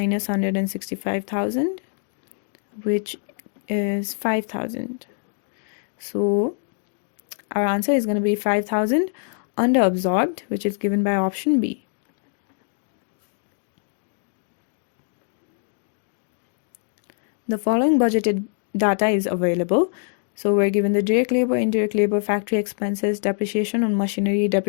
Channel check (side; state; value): right; silent; 61 dB below the other